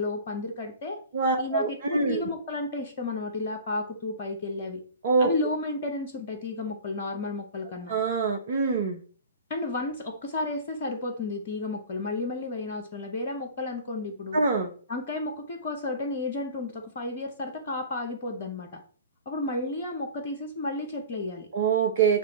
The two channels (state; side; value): inverted; both; correlation -0.38